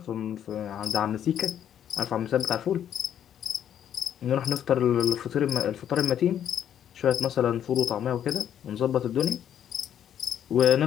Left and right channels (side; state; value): right; quieter; 9.8 dB